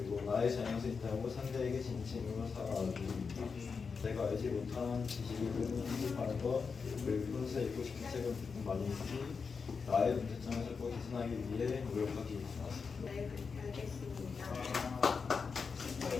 나의 잘못이 있다고 상대에게 진심으로 사과하기, 내가 알지 못한 지식을 습득하는 것, 그리고 평소에 읽고 싶은 책을 조금 많이 읽기, 나의 문제점을 찾고 개선하기 위해 노력하기. 네, 알겠습니다.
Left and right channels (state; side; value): quieter; right; 5.3 dB